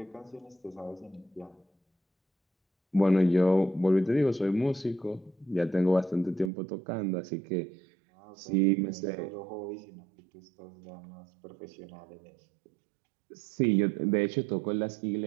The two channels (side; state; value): left; drops out; at 6.5 s